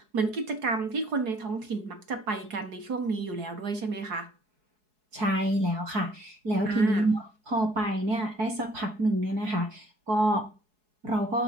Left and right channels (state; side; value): late; left; 4.7 ms